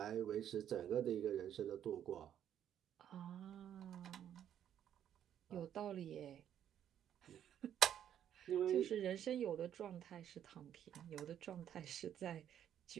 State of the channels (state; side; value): quieter; left; 10.0 dB